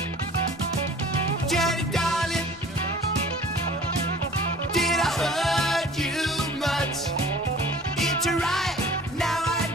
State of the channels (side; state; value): both; normal; correlation 0.47